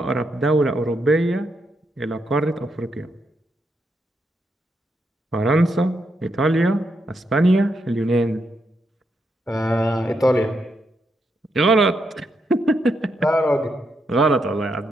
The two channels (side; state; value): both; normal; correlation 0.81